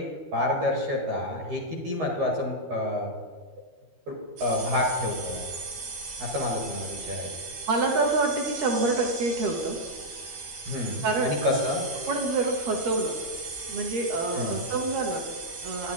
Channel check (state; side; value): late; left; 13 ms